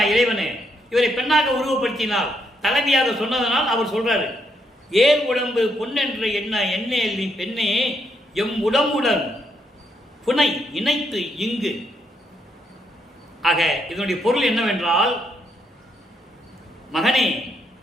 இறைவனே? இவரை பெண்ணாக உருவப்படுத்தினால், தலைவியாக சொன்னதனால் அவர் சொல்றாரு, ஏர் உடம்பு பொன்னென்று எண்ணேல் நீ பெண்ணே, எம் உடம்புடன் புனை இணைத்து இங்கு. ஆக இதனுடைய பொருள் என்னவென்றால், மகனே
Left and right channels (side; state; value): both; normal; correlation 0.76